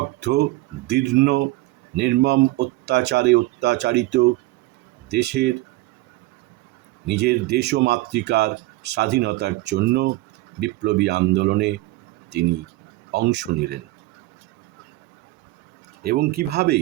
দীর্ণ, নির্মম অত্যাচারে অত্যাচারিত দেশের, নিজের দেশ ও মাতৃকার স্বাধীনতার জন্য বিপ্লবী আন্দোলনে তিনি অংশ নিলেন এবং কিভাবে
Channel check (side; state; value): left; quieter; 19.2 dB